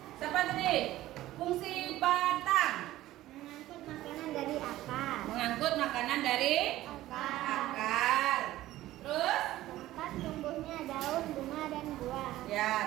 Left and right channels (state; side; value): quieter; left; 15.4 dB